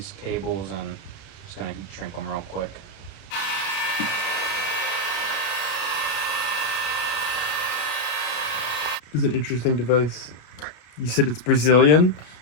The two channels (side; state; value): right; late; 33 ms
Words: cables, and just gonna shrink them real quick. it's an interesting device. You said it's Brazilian?